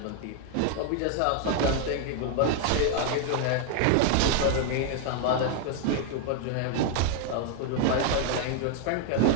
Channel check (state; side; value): different; both; correlation 0.00